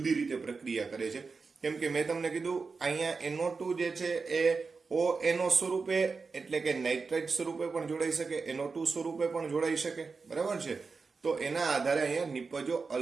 રીતે પ્રક્રિયા કરે છે. કેમ કે મેં તમને કીધું અહીંયા NO2 જે છે એ ONO સ્વરૂપે એટલે કે નાઇટ્રાઇટ સ્વરૂપે પણ જોડાઈ શકે, NO2 સ્વરૂપે પણ જોડાઈ શકે, બરાબર છે. તો એના આધારે અહીંયા નિપજો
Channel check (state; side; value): quieter; left; 4.6 dB